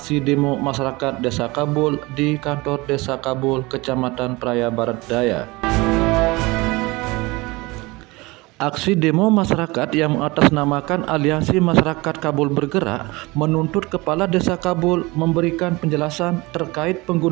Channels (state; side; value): quieter; left; 23.1 dB